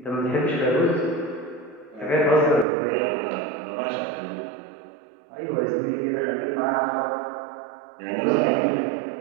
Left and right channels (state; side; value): drops out; left; at 2.7 s